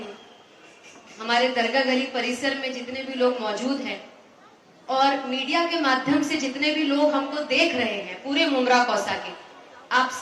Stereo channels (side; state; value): both; identical; correlation 1.00